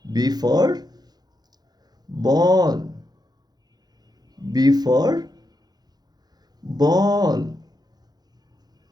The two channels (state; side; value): late; left; 0.19 ms